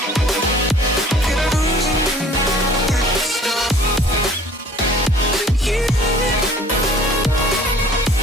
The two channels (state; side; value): normal; both; correlation 0.51